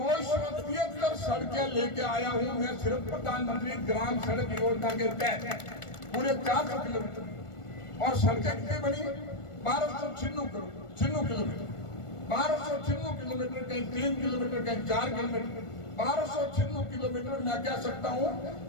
सड़कें लेके आया हूँ मैं सिर्फ प्रधानमंत्री ग्राम सड़क योजना के तहत पूरे 400 किलोमीटर, और सड़कें कितनी बनी 1296 किलोमीटर, 1296 किलोमीटर, कहीं 3 किलोमीटर, कहीं 4 किलोमीटर, 1296 किलोमीटर। मैं कह सकता हूं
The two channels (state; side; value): late; right; 1.4 ms